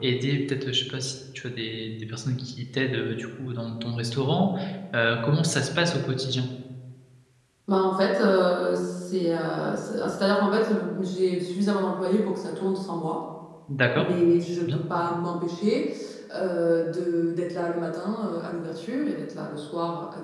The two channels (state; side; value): identical; both; correlation 1.00